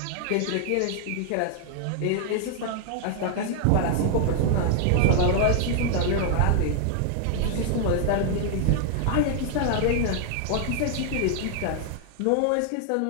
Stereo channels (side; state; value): both; different; correlation 0.00